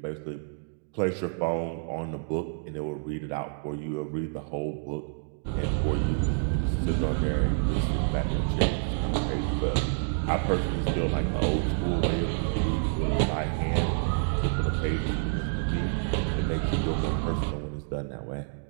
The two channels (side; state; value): left; silent; digital silence